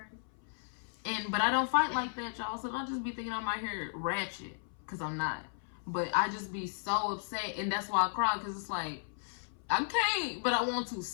But I don't fight like that, y'all. So don't just be thinking I'm out here ratchet, because I'm not. But I just be so upset, and that's why I cry, because it's like, I can't, but I want to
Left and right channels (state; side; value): silent; right; 55 dB below the other